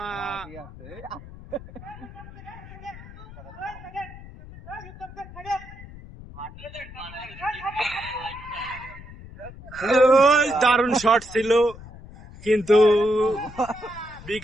দারুণ শট ছিল, কিন্তু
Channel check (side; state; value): left; noise; rumble, 16 dB below the sound